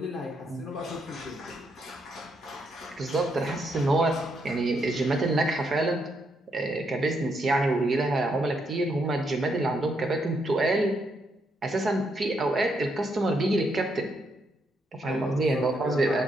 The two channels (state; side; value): normal; both; correlation 0.77